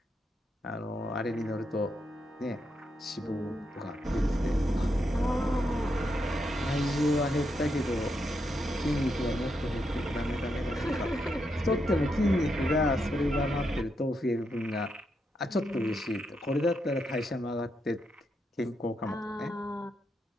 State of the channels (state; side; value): normal; both; correlation 0.82